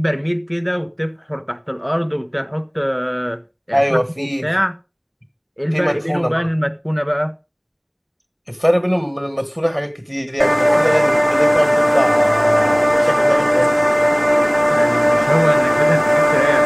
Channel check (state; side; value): identical; both; correlation 1.00